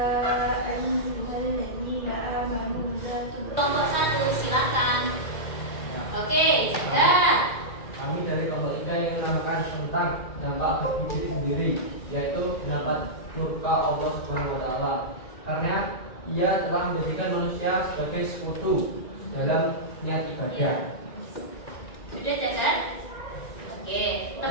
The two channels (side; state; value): right; late; 2.0 ms